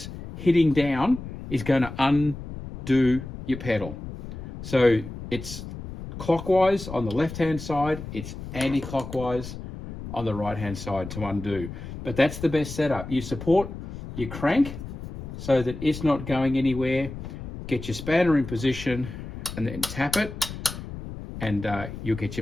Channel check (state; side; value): noise; left; rumble, 10 dB below the sound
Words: hitting down is going to undo your pedal. So it's clockwise on the left-hand side, it's anti-clockwise on the right-hand side to undo. But that's the best setup. You support your crank so that it's not going anywhere. Get your spanner in position and then tap it, and you'll get